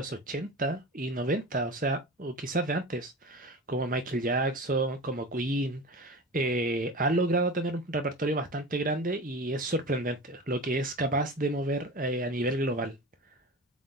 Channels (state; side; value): normal; both; correlation 0.31